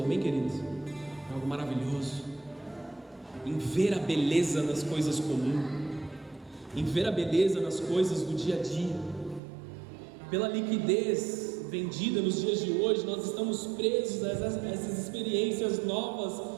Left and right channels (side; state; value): left; drops out; at 9.4 s